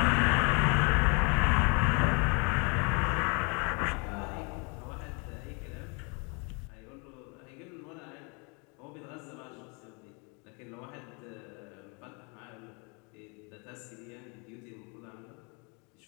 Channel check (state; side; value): quieter; right; 33.0 dB